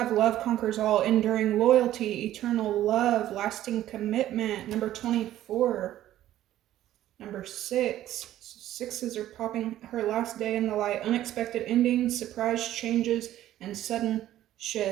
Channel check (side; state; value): left; quieter; 13.2 dB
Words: love conquers all, enduring loyalty, eternal love, lasting commitment. Number 24. Number 6. Sixes are popping. Her last day in the light, unexpected endings, surprise changes, and sudden